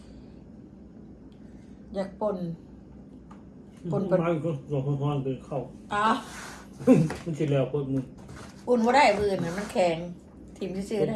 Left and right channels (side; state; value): both; identical; correlation 1.00